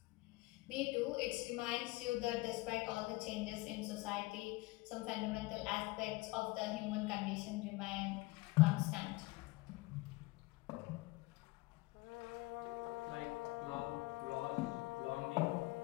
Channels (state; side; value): quieter; right; 22.0 dB